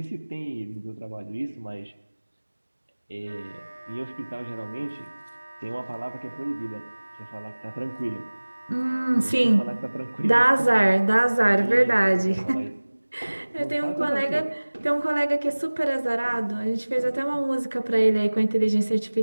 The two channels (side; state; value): both; inverted; correlation -1.00